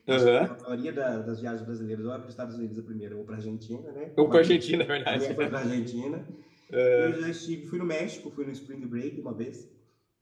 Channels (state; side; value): identical; both; correlation 1.00